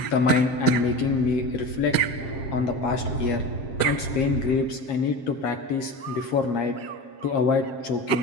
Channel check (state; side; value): late; right; 7.5 ms